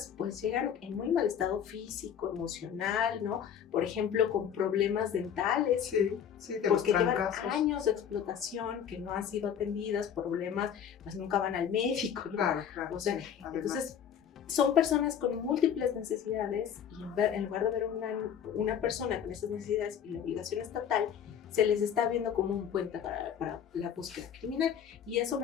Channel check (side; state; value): right; quieter; 8.6 dB